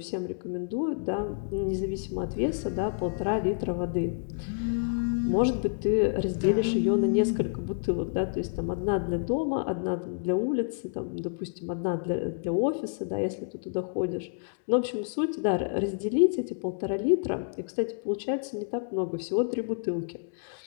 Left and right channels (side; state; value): right; silent; digital silence